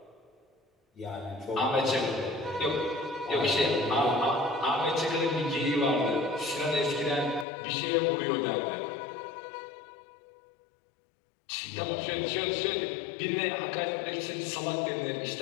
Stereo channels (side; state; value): right; drops out; at 7.5 s